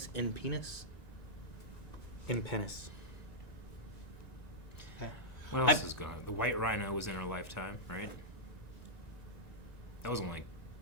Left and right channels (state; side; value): late; right; 1.9 ms